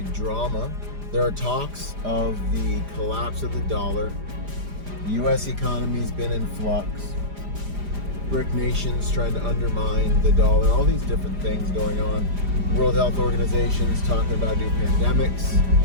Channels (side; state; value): left; late; 5.0 ms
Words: drama. There are talks of the collapse of the dollar. The U.S. economy's been in flux. BRIC nations trying to undermine the dollar, all these different things going on. World Health Organization's talking about new pandemics.